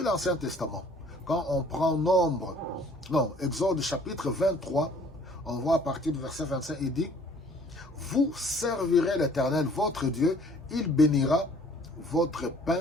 l'Ancien Testament, quand on prend Exode chapitre 23, on voit à partir du verset 25, il dit: vous servirez l'Éternel, votre Dieu, il bénira votre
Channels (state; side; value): normal; both; correlation 0.56